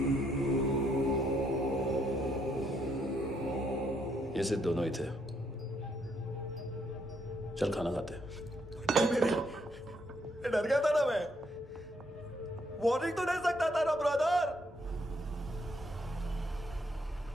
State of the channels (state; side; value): normal; both; correlation 0.73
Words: ये सिर्फ दोनों ही थे। चल खाना खाते हैं। डर गया था ना मैं। वार्निंग तो दे सकता था ना ब्रदर।